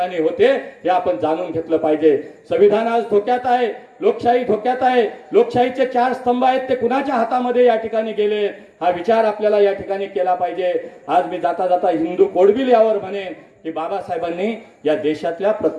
होते, हे आपण जाणून घेतलं पाहिजे. संविधान आज धोक्यात आहे, लोकशाही धोक्यात आहे. लोकशाहीचे 4 स्तंभ आहेत ते कुणाच्या हातामध्ये या ठिकाणी गेले, हा विचार आपल्याला या ठिकाणी केला पाहिजे. आज मी जाता जाता हिंदू कोड बिल यावर म्हणेन की बाबासाहेबांनी या देशातल्या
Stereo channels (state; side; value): identical; both; correlation 1.00